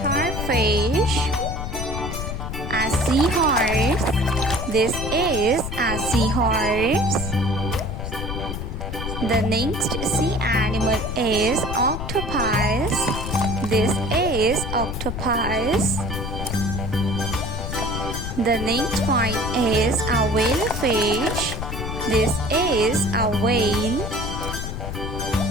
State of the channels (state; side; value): noise; left; rumble, 5 dB below the sound